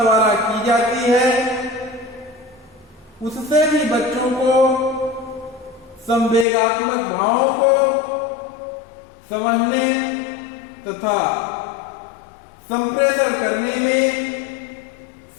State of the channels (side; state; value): right; drops out; at 6.5 s